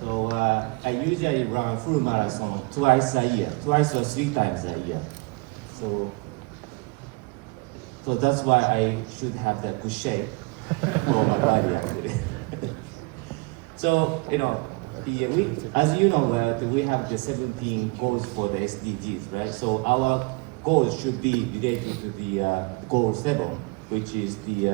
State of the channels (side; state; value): left; quieter; 27.6 dB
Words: I usually run full marathon twice or 3 times a year. So that's why I should have that good shape for my body actually. So, as you know, we have the 17 goals for the SDGs, right? So our goals should be related to the goal 7, which is